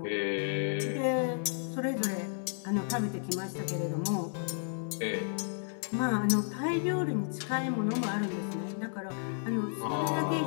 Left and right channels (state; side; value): silent; right; 56 dB below the other